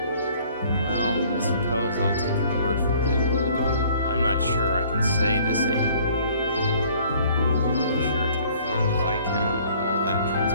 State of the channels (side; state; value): both; inverted; correlation -0.56